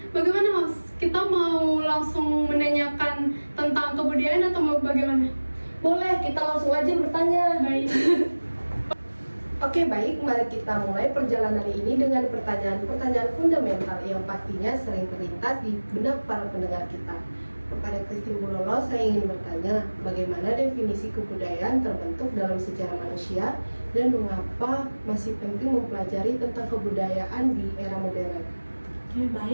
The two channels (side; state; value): both; inverted; correlation -1.00